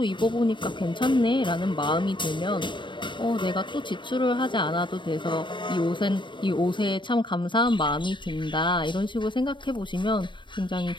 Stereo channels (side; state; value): right; late; 0.23 ms